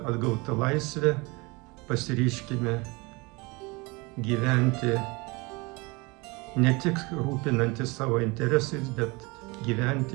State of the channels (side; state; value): left; quieter; 25.9 dB